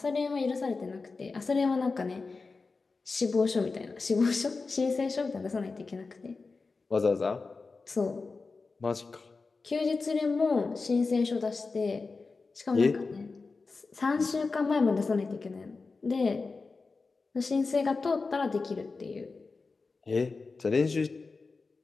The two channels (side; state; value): right; quieter; 4.1 dB